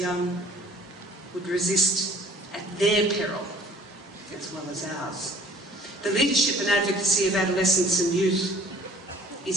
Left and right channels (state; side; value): normal; both; correlation 0.54